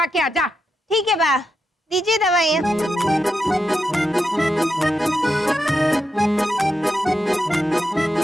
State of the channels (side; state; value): both; normal; correlation 0.86